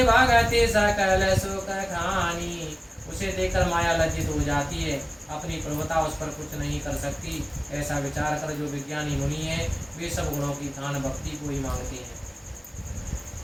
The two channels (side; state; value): both; identical; correlation 1.00